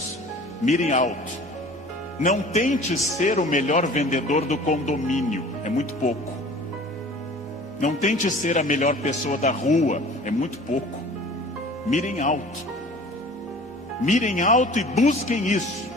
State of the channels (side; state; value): both; normal; correlation 0.45